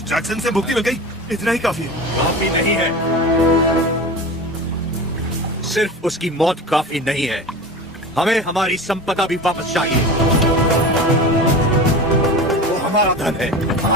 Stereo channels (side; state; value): both; normal; correlation 0.31